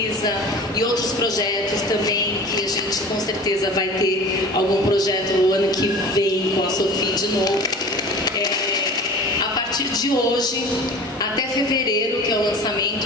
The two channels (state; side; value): normal; both; correlation 0.39